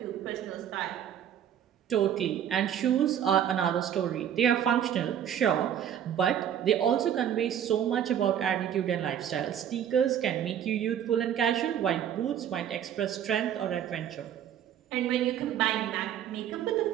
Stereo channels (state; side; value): quieter; left; 9.7 dB